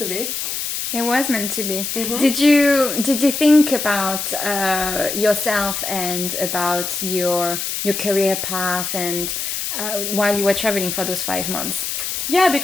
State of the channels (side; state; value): left; noise; hiss, 3 dB below the sound